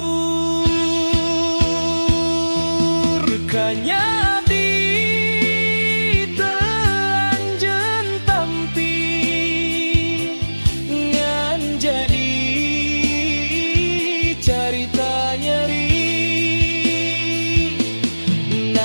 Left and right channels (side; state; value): both; inverted; correlation -1.00